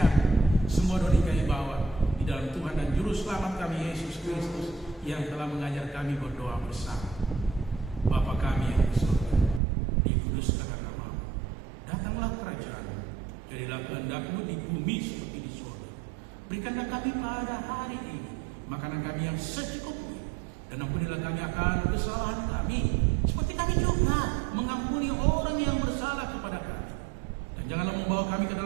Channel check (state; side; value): drops out; left; at 9.6 s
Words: semua doa kami bawa di dalam Tuhan dan Juru Selamat kami Yesus Kristus yang telah mengajar kami berdoa bersama. Bapa kami yang di surga, dikuduskanlah nama-Mu, datanglah kerajaan-Mu, jadilah kehendak-Mu di bumi seperti di surga. Berikanlah kami pada hari ini makanan kami yang secukupnya, dan ampunilah kami akan kesalahan kami, seperti kami juga mengampuni orang yang bersalah kepada kami. Dan janganlah membawa kami ke